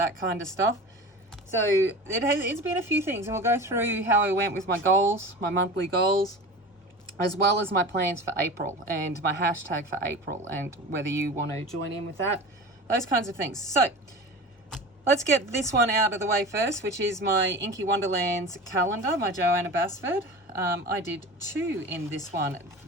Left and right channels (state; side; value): normal; both; correlation 0.34